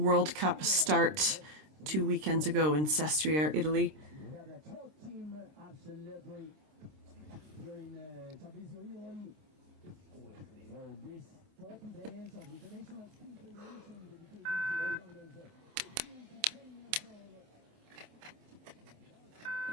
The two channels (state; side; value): late; left; 26 ms